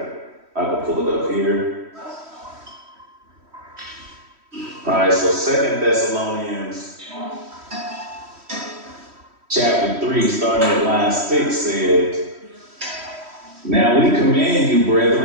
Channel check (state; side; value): late; left; 3.1 ms